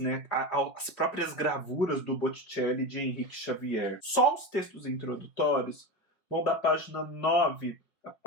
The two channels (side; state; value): right; late; 5.0 ms